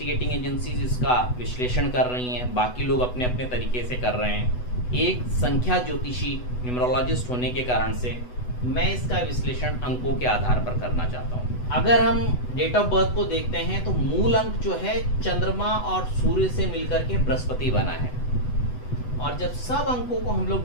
एजेंसीज इसका विश्लेषण कर रही हैं, बाकी लोग अपने अपने तरीके से कर रहे हैं। एक संख्या ज्योतिषी न्यूमरोलॉजिस्ट होने के कारण से मैं इसका विश्लेषण अंकों के आधार पर करना चाहता हूँ। अगर हम डेट ऑफ बर्थ को देखते हैं तो मूल अंक जो है चंद्रमा और सूर्य से मिलकर के बृहस्पति बना है, और जब सब अंकों को हम लोग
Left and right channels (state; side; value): late; right; 8.1 ms